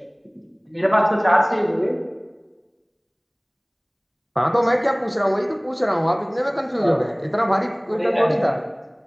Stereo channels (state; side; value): identical; both; correlation 1.00